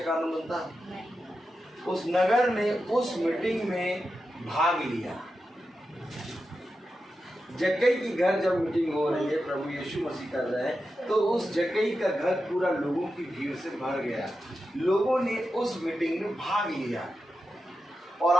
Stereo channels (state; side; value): normal; both; correlation 0.90